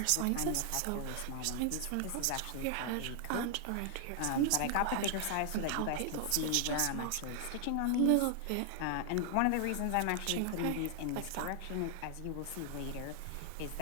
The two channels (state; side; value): different; both; correlation 0.00